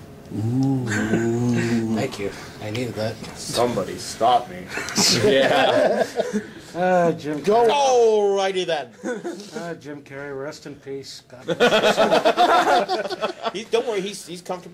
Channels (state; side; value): identical; both; correlation 1.00